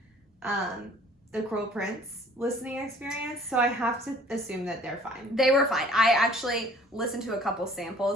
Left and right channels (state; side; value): normal; both; correlation 0.53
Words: the Cruel Prince listening experience, so I have to assume that they're fine. They were fine. I actually listened to a couple